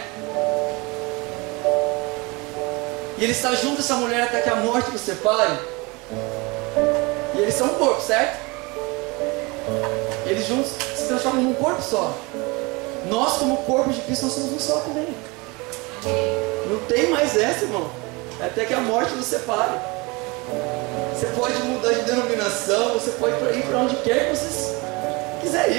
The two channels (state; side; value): quieter; left; 26.1 dB